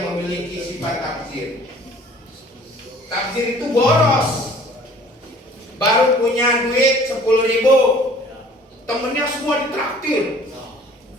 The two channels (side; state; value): both; normal; correlation 0.51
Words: sifat tabzir. Tabzir itu boros. Baru punya duit 10.000, temennya semua ditraktir.